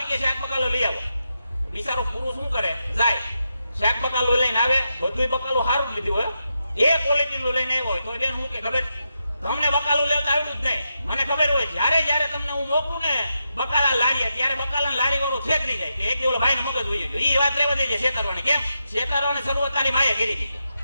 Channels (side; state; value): both; inverted; correlation -0.86